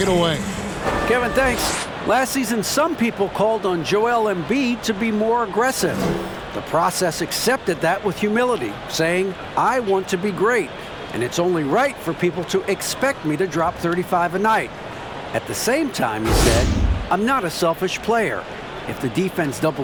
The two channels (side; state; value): both; identical; correlation 1.00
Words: it away. Kevin, thanks. Last season, some people called on Joel Embiid to be more aggressive. The process accepted that with humility, saying, I want to be great, and it's only right for people to expect me to drop 35 a night. At the same time, he said, I'm not a selfish player. If the defense